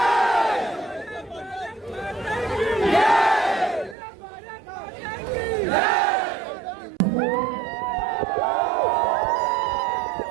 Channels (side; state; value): left; drops out; at 4.0 s